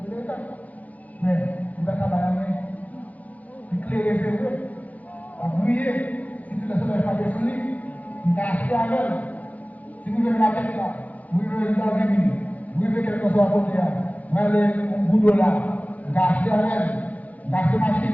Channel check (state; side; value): late; right; 0.075 ms